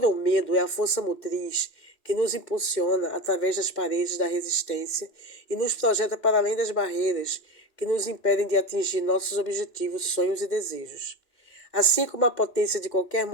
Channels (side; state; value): right; late; 2.2 ms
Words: ou medo é a força motriz que nos impulsiona através das paredes da resistência e nos projeta para além das barreiras que nos impedem de atingir nossos objetivos, sonhos e desejos. Assim como a potência de qualquer